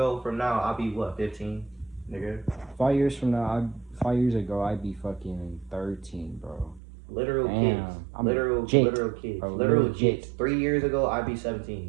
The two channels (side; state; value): left; drops out; at 6.8 s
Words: from now, I'll be what, 15, nigga? 5 years from now, 5 years ago, I'd be fucking 13, bro. Literal kids. Literal kids. Bro, literal kids. 3 years ago, I'd be